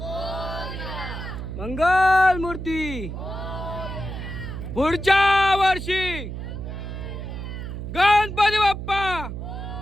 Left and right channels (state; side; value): noise; right; hum, 7 dB below the sound